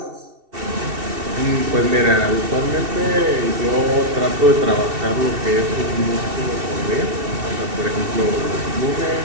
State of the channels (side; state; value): left; late; 2.7 ms